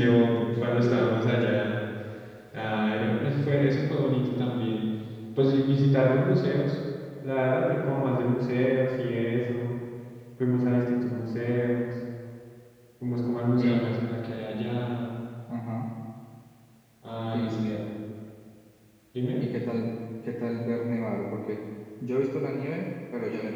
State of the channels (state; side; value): identical; both; correlation 1.00